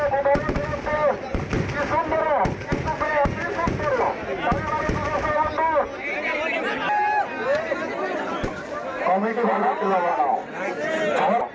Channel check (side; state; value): both; identical; correlation 1.00